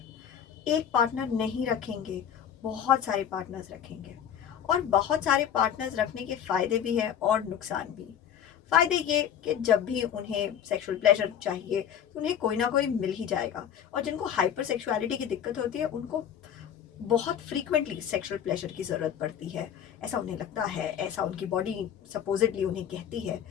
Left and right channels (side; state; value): right; quieter; 9.1 dB